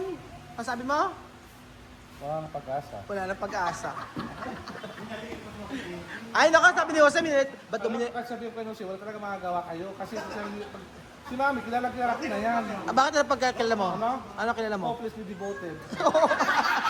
Ang sabi mo? Wala nang pag-asa. Wala na pag-asa. Ay, naku, sabi ni Jose, ba't domine... Kahit sabihin ko si wala talaga magagawa kayo. Kasi si Mami, kilala ko na yan. Bakit na pagkakilala mo? Ano? Ano kilala mo? Hopelessly devoted.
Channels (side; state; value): both; identical; correlation 1.00